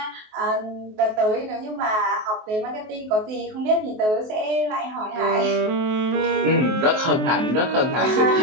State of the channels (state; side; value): late; left; 23 ms